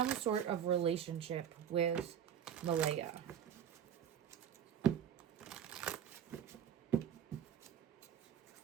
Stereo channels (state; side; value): quieter; left; 9.2 dB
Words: sort of relationship with Malaya?